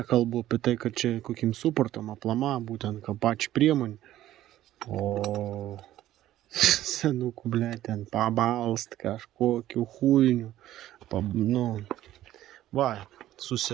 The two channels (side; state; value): left; quieter; 13.6 dB